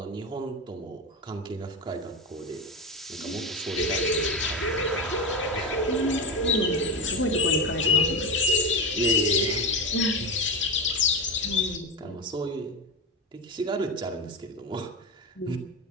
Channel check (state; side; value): normal; both; correlation 0.19